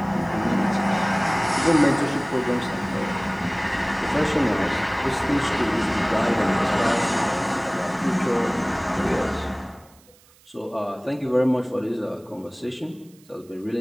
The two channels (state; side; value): noise; right; hiss, 29 dB below the sound